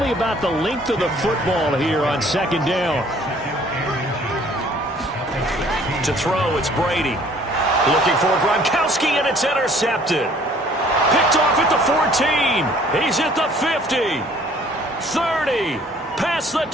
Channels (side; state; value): both; normal; correlation 0.57